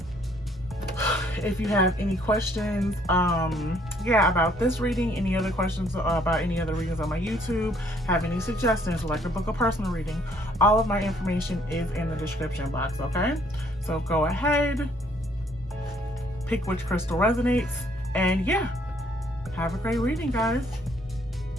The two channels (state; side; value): normal; both; correlation 0.64